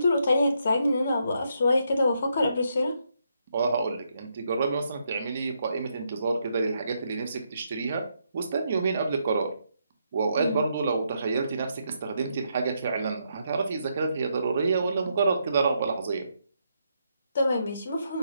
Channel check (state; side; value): inverted; both; correlation -0.78